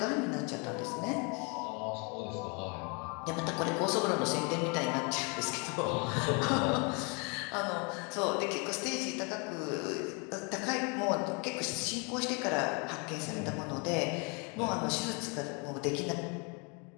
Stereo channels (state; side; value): quieter; right; 33.1 dB